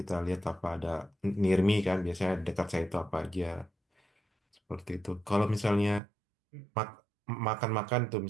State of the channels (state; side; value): drops out; left; at 6.0 s